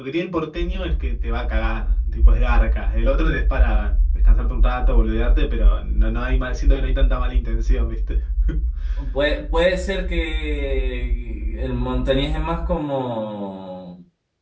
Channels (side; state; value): both; identical; correlation 1.00